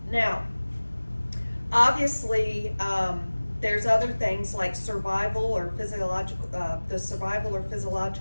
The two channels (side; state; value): both; inverted; correlation -1.00